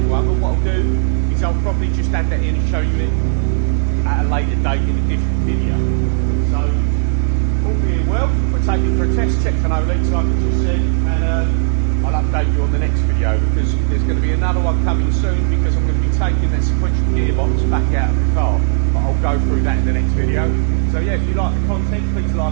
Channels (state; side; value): silent; left; 65 dB below the other